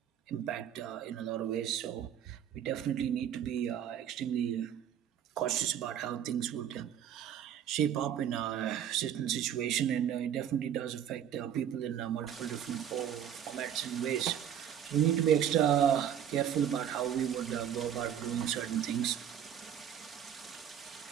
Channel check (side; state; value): left; quieter; 9.5 dB